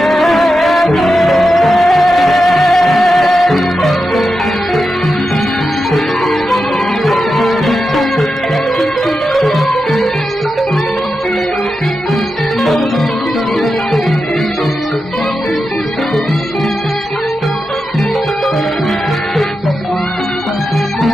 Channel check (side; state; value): both; normal; correlation 0.89